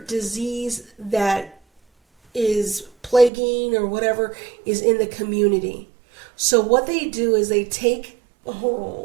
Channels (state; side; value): drops out; left; at 3.3 s